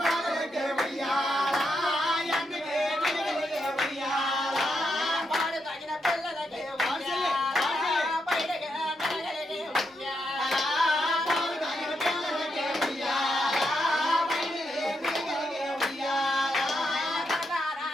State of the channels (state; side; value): normal; both; correlation 0.82